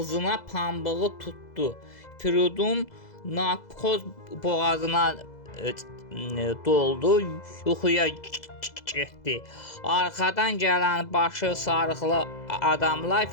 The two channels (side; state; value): right; late; 2.0 ms